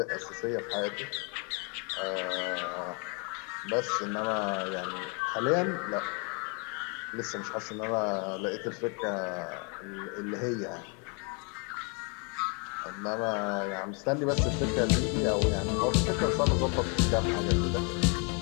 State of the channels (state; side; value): quieter; right; 35.0 dB